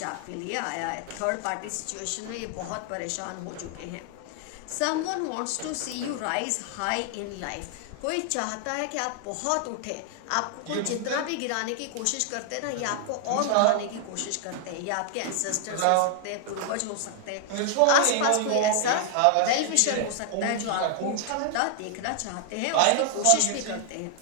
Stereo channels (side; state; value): both; different; correlation 0.00